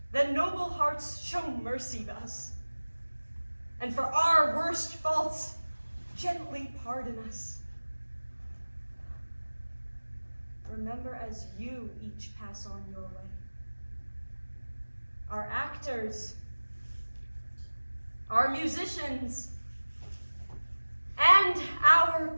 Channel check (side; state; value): both; inverted; correlation -1.00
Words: Then noble hearts show mercy to us, and for our worst faults, gently pardon us. Remember as you each pass on your way. Our actors, our musicians, and our